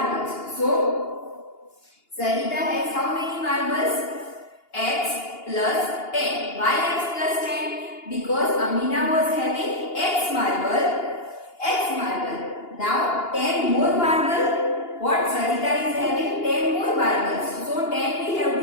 So Sarita has how many marbles? X plus 10. Why x plus 10? Because Amina was having x marble. Now 10 more marble. What Sarita is having? 10 more marbles. So 10 we have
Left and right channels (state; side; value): late; right; 2.8 ms